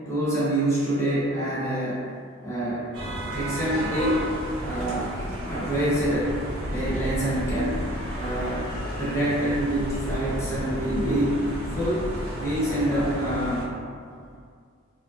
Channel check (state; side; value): normal; both; correlation 0.51